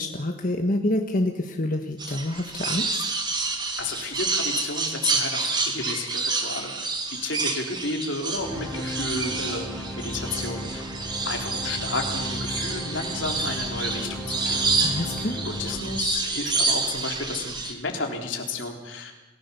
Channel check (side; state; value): both; normal; correlation 0.28